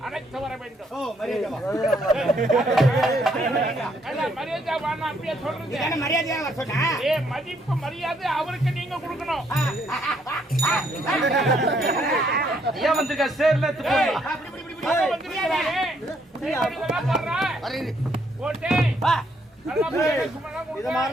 அழைத்து வர வேண்டும். ஓ மரியாதை மரியாதை வாங்க அப்படியே சொல்றது மரியாதையா வர சொன்னா மதிப்பு மரியாதை அவருக்கு நீங்க கொடுக்கணும். ஏன் வந்திருக்க சேர்ல இது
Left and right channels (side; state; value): both; normal; correlation 0.71